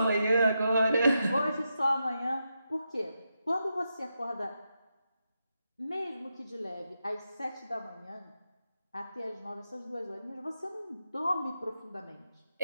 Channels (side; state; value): both; inverted; correlation -0.86